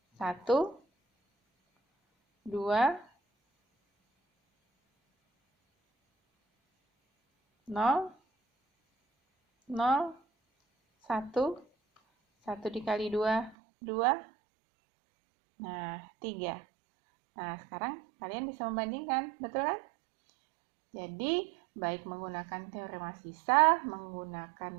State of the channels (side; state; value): left; drops out; at 13.6 s